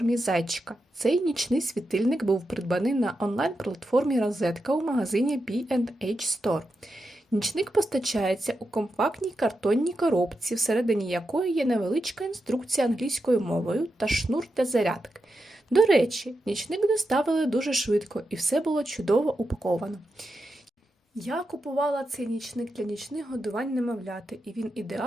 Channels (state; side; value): normal; both; correlation 0.88